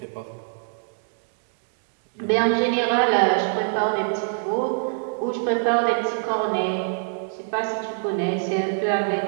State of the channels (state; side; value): silent; left; digital silence